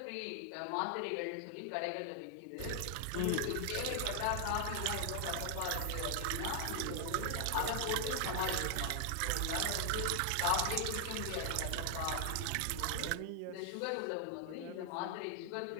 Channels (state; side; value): different; both; correlation 0.00